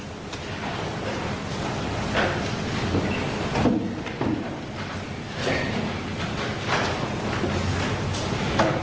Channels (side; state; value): both; identical; correlation 1.00